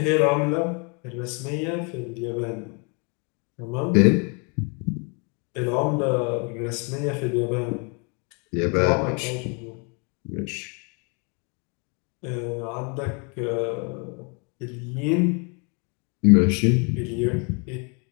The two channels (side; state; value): right; quieter; 34.3 dB